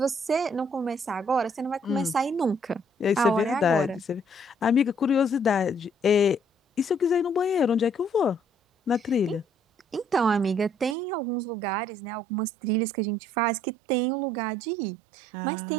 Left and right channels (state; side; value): drops out; left; at 11.0 s